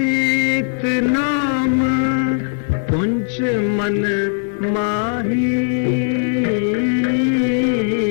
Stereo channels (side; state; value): right; silent; digital silence